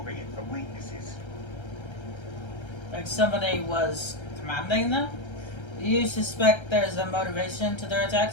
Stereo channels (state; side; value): late; right; 1.3 ms